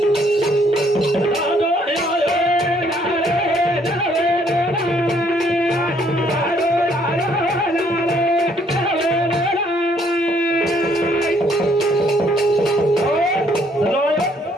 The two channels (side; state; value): both; normal; correlation 0.66